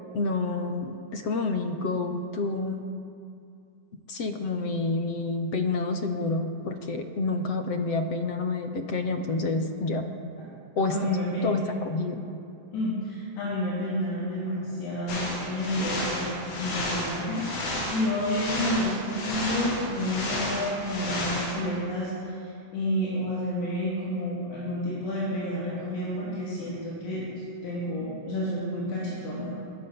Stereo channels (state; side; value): late; right; 7.8 ms